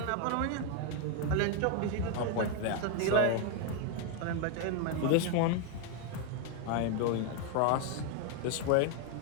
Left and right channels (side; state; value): both; different; correlation 0.01